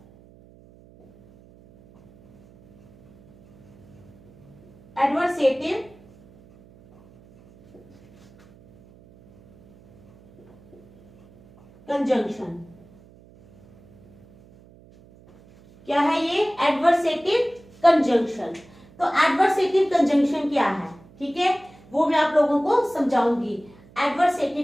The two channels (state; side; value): noise; right; hum, 26 dB below the sound